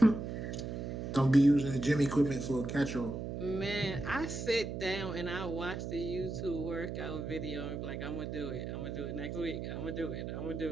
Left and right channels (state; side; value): noise; right; hum, 5 dB below the sound